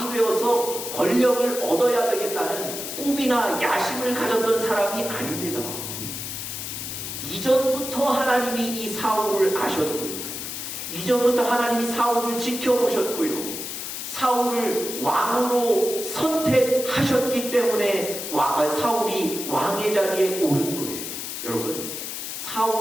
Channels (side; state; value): left; noise; hiss, 6 dB below the sound